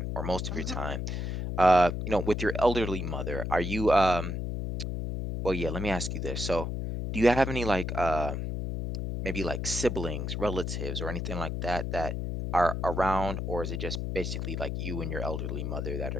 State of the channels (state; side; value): noise; left; hum, 3 dB below the sound